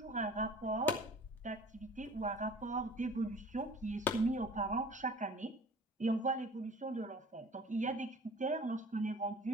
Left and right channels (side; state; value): both; normal; correlation 0.46